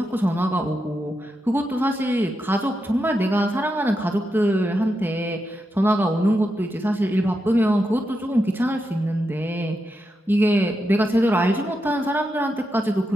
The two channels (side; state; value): both; normal; correlation 0.86